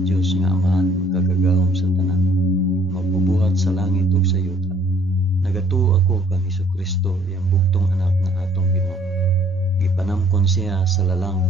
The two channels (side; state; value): both; normal; correlation 0.60